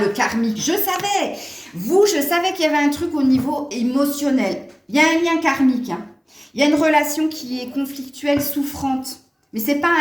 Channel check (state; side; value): identical; both; correlation 1.00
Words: karmique, je savais. Je savais qu'il y avait un truc au niveau émotionnel. Il y a un lien karmique. Hein. Il y a une relation qui est conflictuelle, souffrante. Mais c'est pas